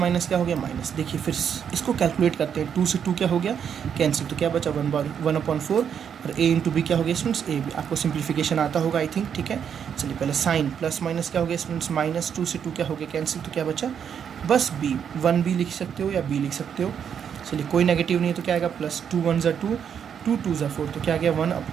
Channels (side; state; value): left; quieter; 7.9 dB